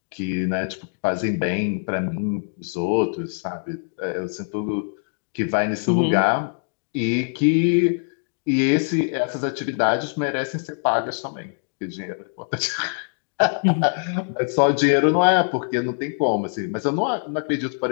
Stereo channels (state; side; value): silent; right; digital silence